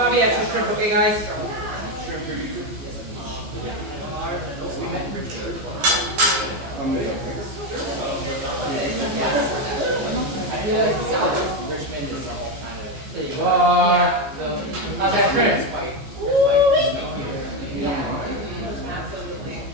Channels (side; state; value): left; late; 15 ms